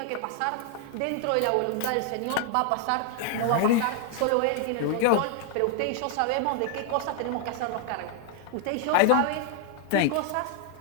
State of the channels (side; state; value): both; different; correlation 0.00